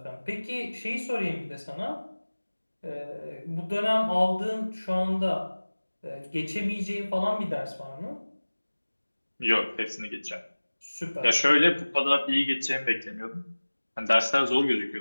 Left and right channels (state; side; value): inverted; both; correlation -1.00